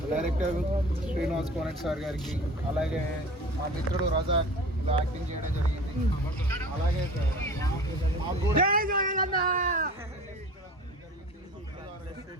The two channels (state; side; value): normal; both; correlation 0.40